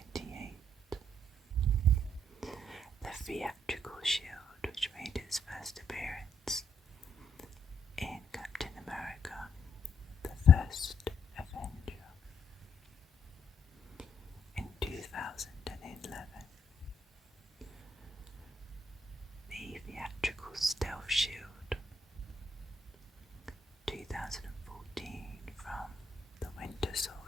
The Theatrical Shield, which made its first appearance in Captain America, the First Avenger, in 2011. The Theatrical Stealth Shield, 2014, from the Winter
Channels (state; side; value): normal; both; correlation 0.71